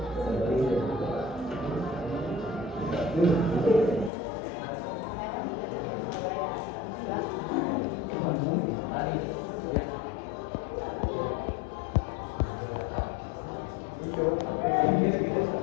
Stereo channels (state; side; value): drops out; right; at 4.1 s